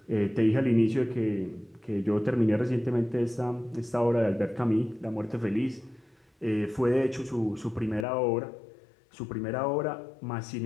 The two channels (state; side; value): drops out; right; at 8.1 s